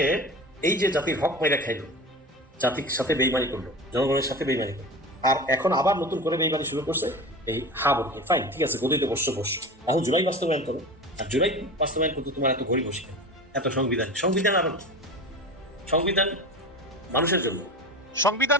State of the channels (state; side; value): normal; both; correlation 0.31